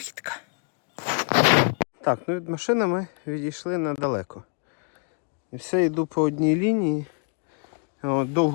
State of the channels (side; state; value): right; quieter; 39.7 dB